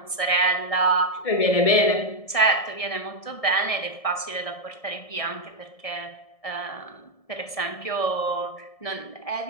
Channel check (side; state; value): right; late; 1.7 ms